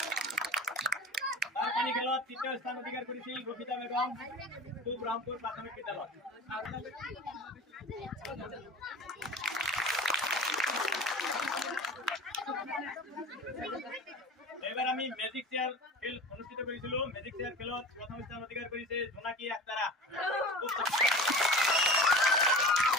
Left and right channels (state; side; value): normal; both; correlation 0.35